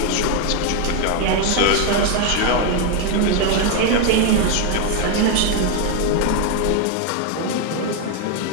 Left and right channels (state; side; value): different; both; correlation 0.01